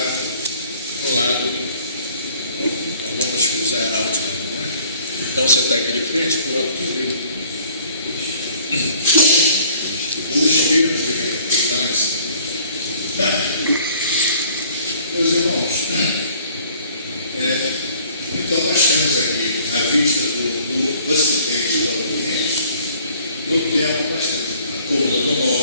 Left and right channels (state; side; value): inverted; both; correlation -0.55